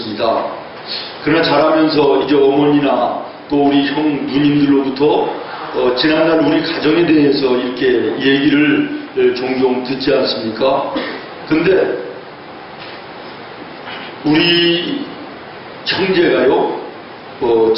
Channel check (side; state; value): both; identical; correlation 1.00